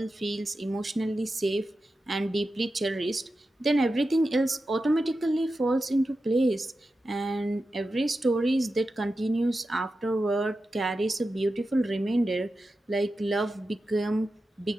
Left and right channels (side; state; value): both; normal; correlation 0.91